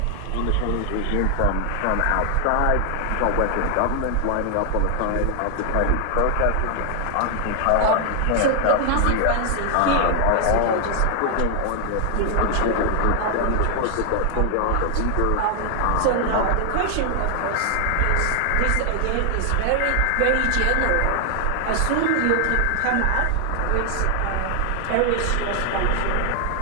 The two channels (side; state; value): both; different; correlation 0.00